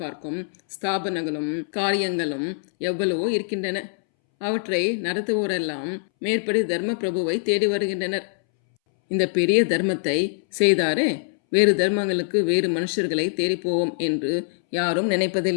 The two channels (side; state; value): right; silent; 63 dB below the other